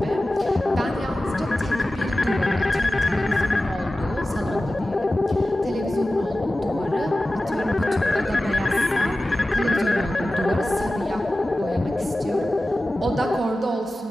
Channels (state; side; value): normal; both; correlation 0.95